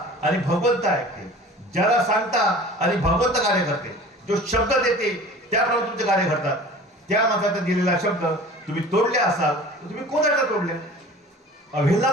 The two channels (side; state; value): both; normal; correlation 0.42